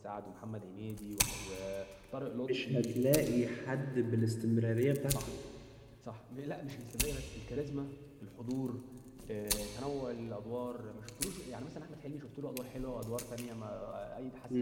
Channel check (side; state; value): both; identical; correlation 1.00